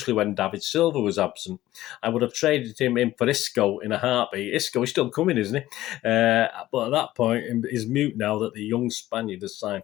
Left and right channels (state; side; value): quieter; right; 15.2 dB